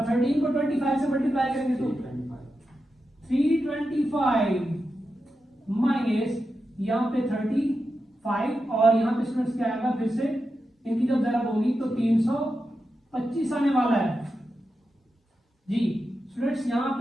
13 को 25 से मल्टीप्लाई करेंगे तो 325 माइनस यहाँ पे 35 और यहाँ पे स्टूडेंट्स क्या आएगा, फिर से इनकी जब जरा होगी तो 325 आने वाला है जी। स्टूडेंट्स यहाँ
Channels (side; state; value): both; normal; correlation 0.89